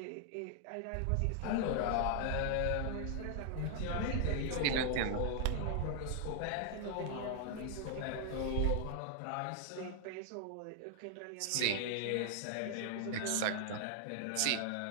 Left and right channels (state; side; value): different; both; correlation 0.00